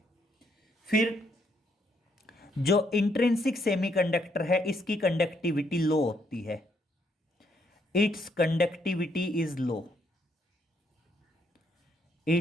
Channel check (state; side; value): normal; both; correlation 0.73